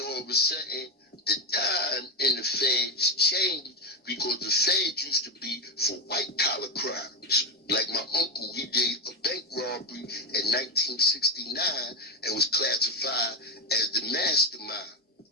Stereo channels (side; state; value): both; normal; correlation 0.11